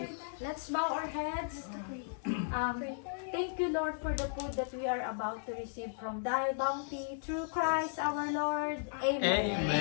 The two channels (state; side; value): silent; right; 54 dB below the other